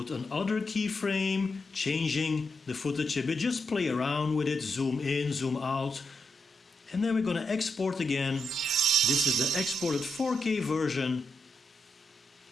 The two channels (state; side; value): normal; both; correlation 0.83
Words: another keyframe, changing the footage a bit. Just play around with it, zoom in, zoom out. And then we're going to export again. This is the exported 4K version.